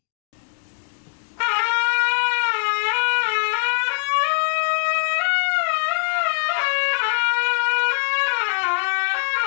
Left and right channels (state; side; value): silent; right; digital silence